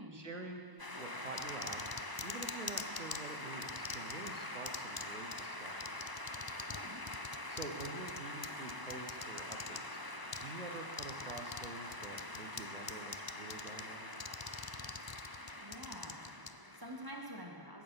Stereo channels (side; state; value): left; late; 1.0 ms